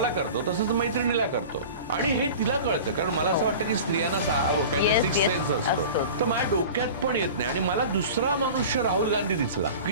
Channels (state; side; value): inverted; both; correlation -0.37